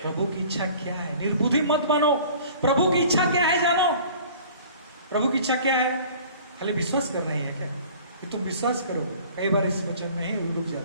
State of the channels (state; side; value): inverted; both; correlation -0.47